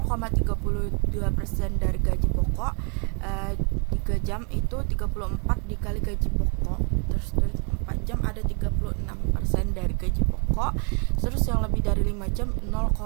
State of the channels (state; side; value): quieter; left; 36.5 dB